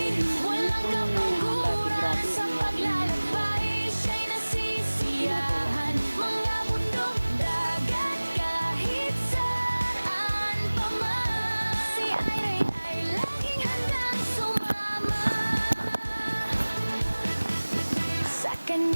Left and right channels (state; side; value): inverted; both; correlation -1.00